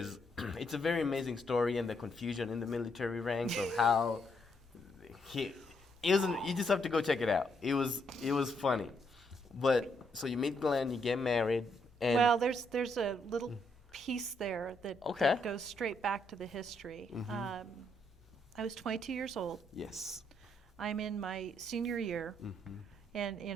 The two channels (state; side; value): normal; both; correlation 0.75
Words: it's a very amazing story and the confusion in the military ranks of how you just have to go check it out. It was funny. But so you meet Glen, you get married, and well, there's a little piece there that goes straight back to the history. I was 22 years old. Yes. I'm in my senior year,